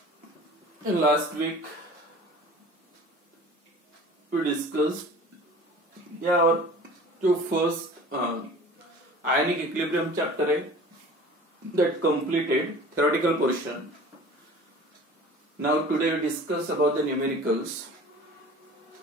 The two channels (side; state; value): both; normal; correlation 0.43